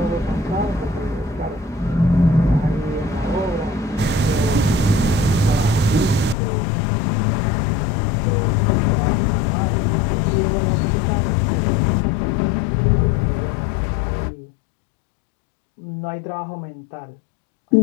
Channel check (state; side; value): drops out; right; at 6.4 s